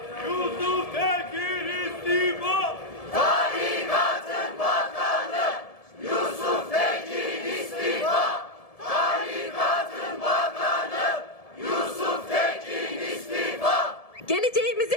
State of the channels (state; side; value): late; right; 1.7 ms